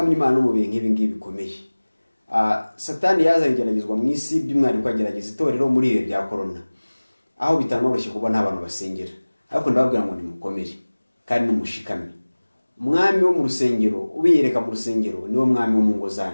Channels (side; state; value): both; inverted; correlation -1.00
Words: Imana no mu bihe nk'ibi ngibi bikomeye. Satani yazanye igeragezwa mu isi, by'umwihariko agerageza itorero muri ibi bya corona, aho bitanoroshye kuba nta bantu basengera. Ariko ndababwira ngo nimukomere kandi numushikame. Umwami wo mu rusengero, ubiyereka mu rusengero, niwo mwami wo mu ngo